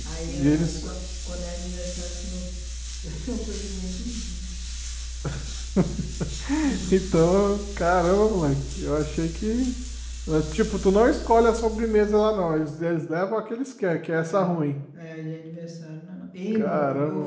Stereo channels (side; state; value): both; identical; correlation 1.00